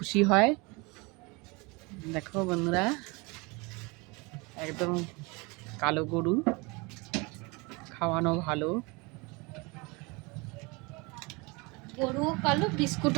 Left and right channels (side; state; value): left; quieter; 27.5 dB